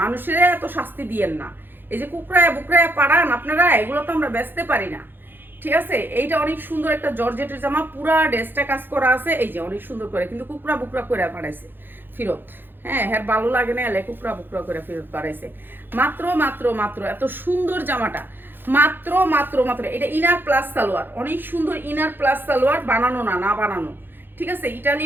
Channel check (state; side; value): late; left; 0.097 ms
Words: মানুষের এত শাস্তি দিয়েন না। এই যে কুকরায় বুকরায় পাড়ান আপনারা, এগুলো তো আমরা বেচতে পারি না, ঠিক আছে। এইটা অনেক সুন্দর একটা জর্জেটের জামা, পুরা ড্রেসটা কাজ করা আছে, এই যে অনেক সুন্দর করে, কিন্তু কুকরা বুকরা করে পাঠাইছে ফেরত। হ্যাঁ, ভালো লাগে না, এলে কুকরা বুকরা করে ফেরত পাঠাইছে। মাত্র মাত্র মাত্র এত সুন্দর জামাটা, মাত্র মাত্র মাত্র। এটা ইনার প্লাস সালোয়ার, অনেক সুন্দর ইনার প্লাস সালোয়ার, বানানো না বানানো, ঠিক আছে।